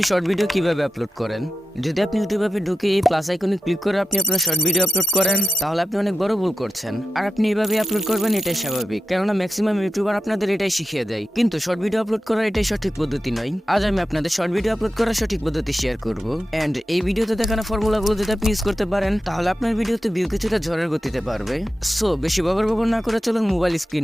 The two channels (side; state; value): both; normal; correlation 0.91